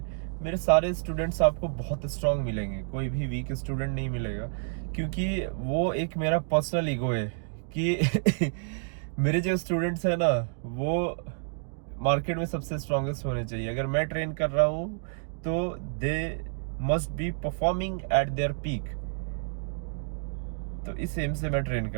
मेरे सारे स्टूडेंट्स आपको बहुत स्ट्रांग मिलेंगे, कोई भी वीक स्टूडेंट नहीं मिलेगा। क्योंकि वो एक मेरा पर्सनल ईगो है कि मेरे जो स्टूडेंट्स हैं ना, वो मार्केट में सबसे स्ट्रांगेस्ट होने चाहिए। अगर मैं ट्रेन कर रहा हूँ तो they must be performing at there peak. तो इस एम से मैं ट्रेन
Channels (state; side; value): silent; left; digital silence